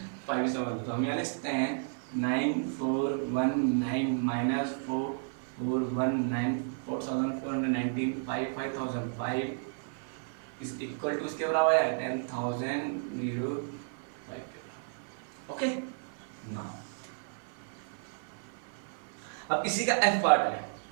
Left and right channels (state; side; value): silent; left; 56 dB below the other